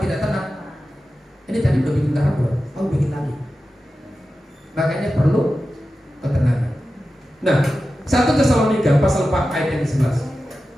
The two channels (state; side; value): normal; both; correlation 0.93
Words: tenang, ini tadi udah bikin garam belum? Oh bikin lagi. Makanya perlu ketenangan. Nah, 1 Tesalonika pasal 4 ayat yang 11.